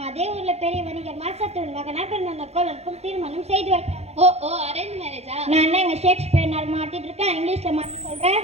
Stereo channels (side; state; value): left; late; 0.31 ms